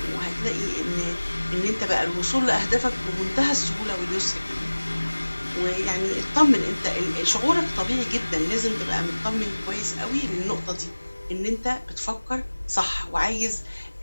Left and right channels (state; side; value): inverted; both; correlation -1.00